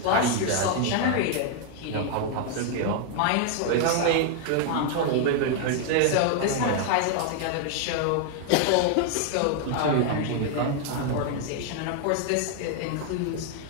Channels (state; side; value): different; both; correlation 0.00